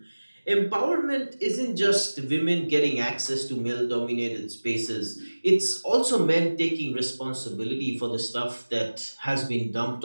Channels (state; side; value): inverted; both; correlation -1.00